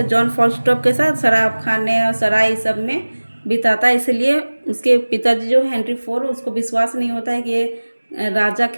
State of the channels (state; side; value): inverted; both; correlation -1.00